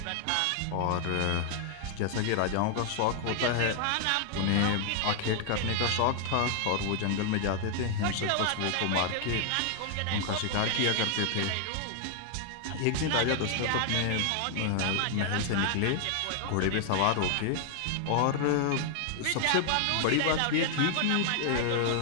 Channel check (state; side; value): different; both; correlation 0.00